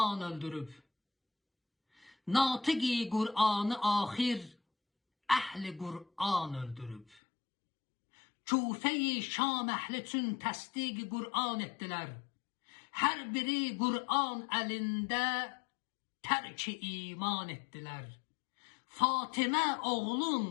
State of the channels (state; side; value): drops out; right; at 7.2 s